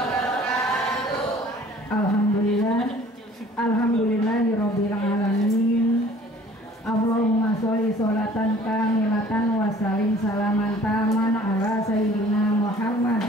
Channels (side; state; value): both; normal; correlation 0.52